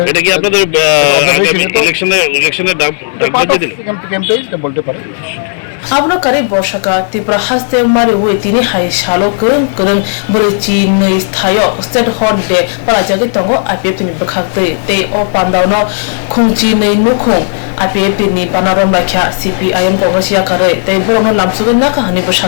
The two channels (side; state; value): right; silent; digital silence